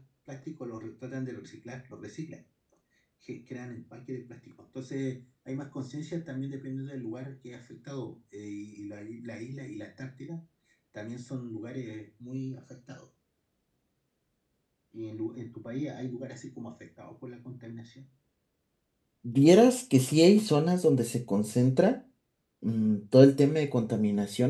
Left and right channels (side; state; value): both; identical; correlation 1.00